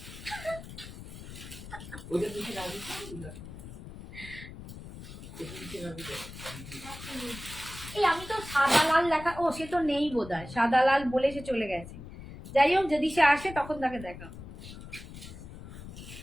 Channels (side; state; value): left; noise; rumble, 13 dB below the sound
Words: এই আমি তো সাদা লাল লেখা, ও সে তো নেই বোধহয়, সাদা লাল বলে সে চলে গেছে। যাই হোক, যদি সে আসে তখন তাকে দেখা।